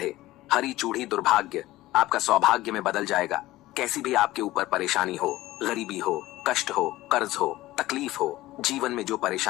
हरी चूड़ी। दुर्भाग्य आपका सौभाग्य में बदल जाएगा। कैसी भी आपके ऊपर परेशानी हो, गरीबी हो, कष्ट हो, कर्ज हो, तकलीफ हो, जीवन में जो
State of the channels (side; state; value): right; quieter; 17.0 dB